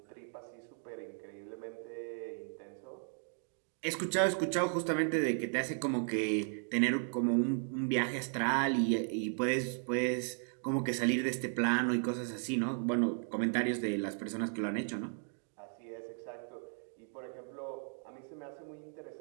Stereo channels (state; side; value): silent; left; 54 dB below the other